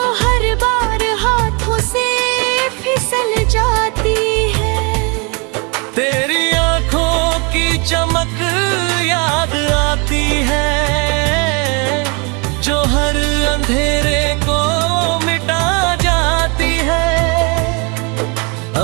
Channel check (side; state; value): left; quieter; 31.6 dB